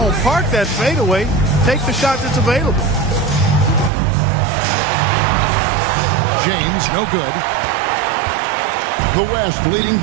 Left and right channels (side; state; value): left; drops out; at 3.9 s